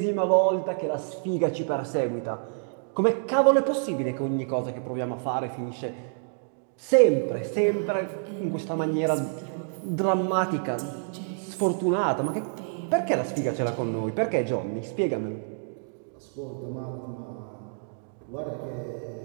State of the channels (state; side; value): silent; left; digital silence